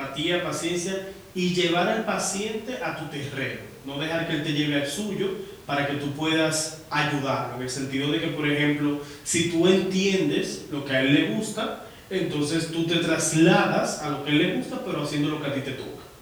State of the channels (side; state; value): both; identical; correlation 1.00